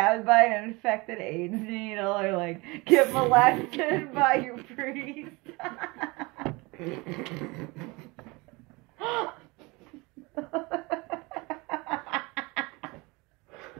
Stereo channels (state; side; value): quieter; left; 25.1 dB